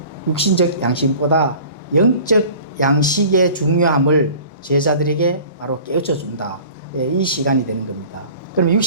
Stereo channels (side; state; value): both; inverted; correlation -0.44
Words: 육신적 양식보다 영적 양식의 중요함을 제자들에게 바로 깨우쳐 준다. 이 시간이 되는 겁니다. 그러면